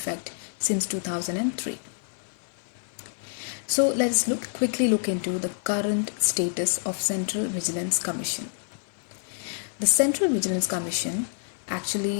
since 2003. So let us quickly look into the current status of Central Vigilance Commission. The Central Vigilance Commission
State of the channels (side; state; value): right; silent; 57 dB below the other